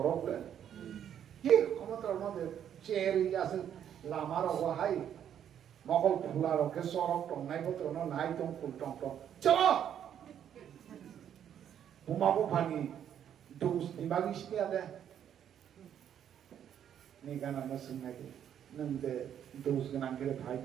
그래 예 그것도 얼마나 제일이 가서 라마라고 하이 먹을 풀라로 그 소록 동나이 것들은 나이 동 꿀동동 저 부마부 파니 도스 니마기 시켜야 돼 네가 나나 생각해 नंदे दोस्त के नाम के लिए भाई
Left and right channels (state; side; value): quieter; left; 9.5 dB